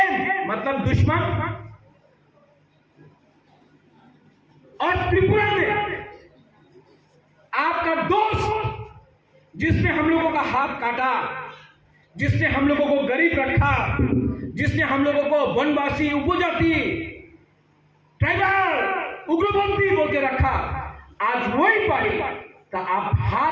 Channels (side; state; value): both; identical; correlation 1.00